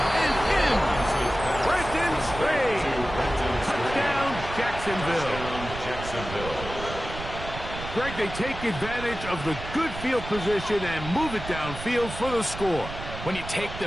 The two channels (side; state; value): right; noise; rumble, 10 dB below the sound